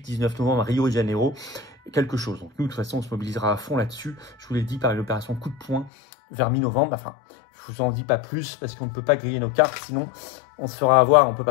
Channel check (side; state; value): right; drops out; at 5.9 s